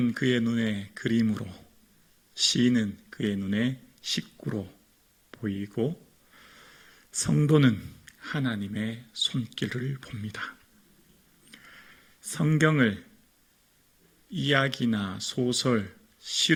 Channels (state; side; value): identical; both; correlation 1.00